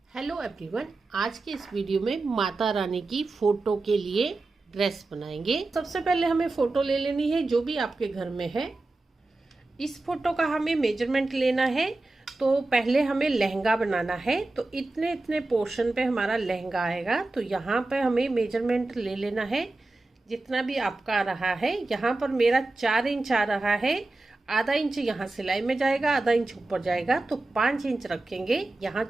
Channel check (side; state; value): left; quieter; 3.1 dB